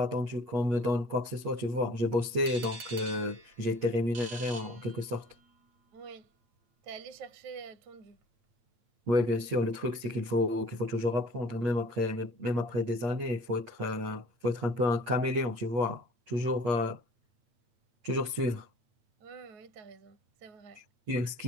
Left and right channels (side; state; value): left; late; 8.4 ms